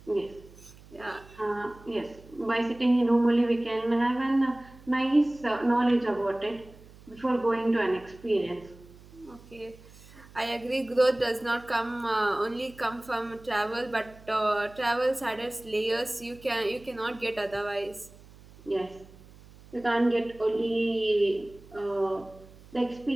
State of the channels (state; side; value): noise; right; hum, 22 dB below the sound